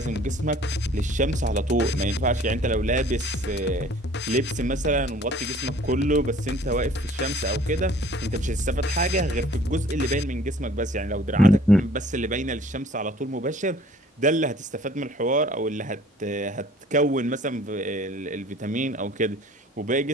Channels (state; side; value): normal; both; correlation 0.53